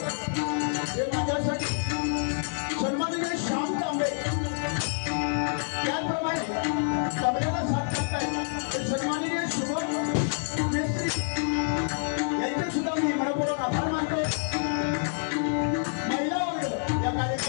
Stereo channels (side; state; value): right; silent; 60 dB below the other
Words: माझ्यासाठी सन्माननीय श्याम तांबे, त्याचप्रमाणे तांबेला साथ लागताय ते सन्माननीय शुभम मेस्त्री यांचे सुद्धा मी मनपूर्वक आभार मानतो. महिला वर्ग या